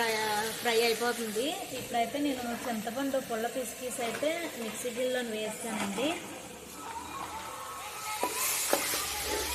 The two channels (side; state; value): both; identical; correlation 1.00